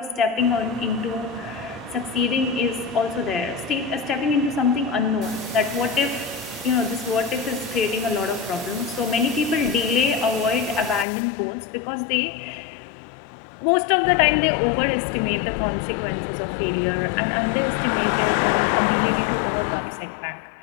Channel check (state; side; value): drops out; right; at 11.1 s